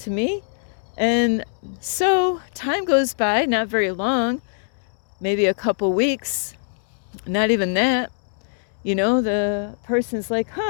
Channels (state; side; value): silent; right; 64 dB below the other